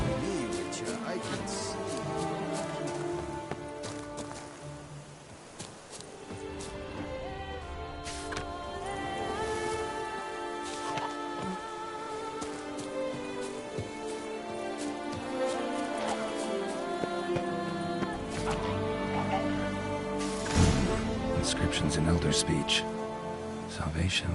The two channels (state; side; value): identical; both; correlation 1.00